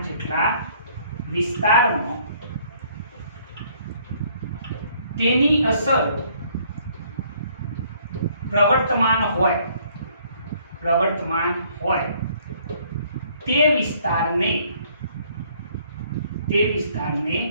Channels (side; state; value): both; inverted; correlation -0.62